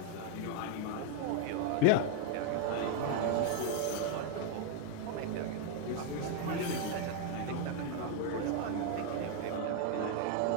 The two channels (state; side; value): different; both; correlation 0.01